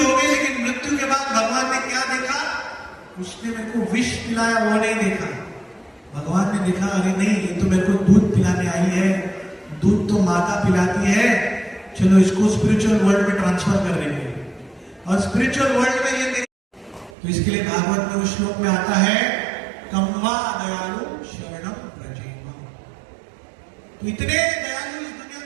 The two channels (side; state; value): left; drops out; at 17.1 s